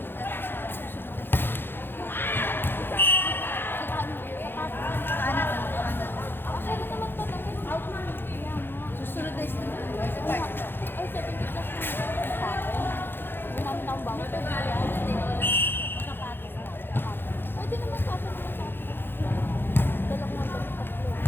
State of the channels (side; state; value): right; late; 0.10 ms